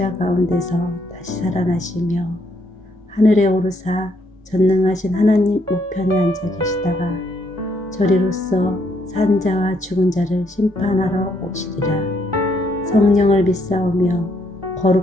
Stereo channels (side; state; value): both; normal; correlation 0.72